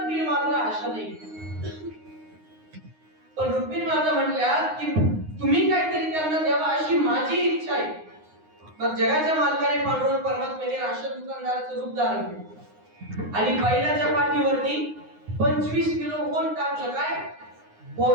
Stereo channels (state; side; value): late; left; 9.6 ms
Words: मात्र आशा नाही. पण रुक्मिणी माता म्हटल्या की तुम्ही काहीतरी त्यांना द्यावा अशी माझी इच्छा आहे. मग जगाच्या मालकाने पांडुरंग परमात्म्याने राशन दुकानदाराचं रूप धारण केलं आणि बैलाच्या पाठीवरती 25 किलो होन टाकलं. काय